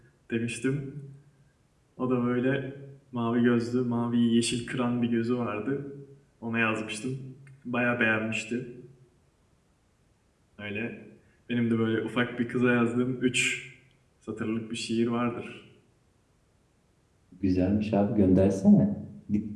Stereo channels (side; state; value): both; identical; correlation 1.00